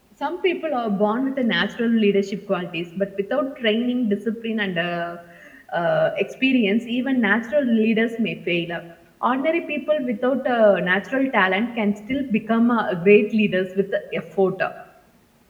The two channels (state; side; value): identical; both; correlation 1.00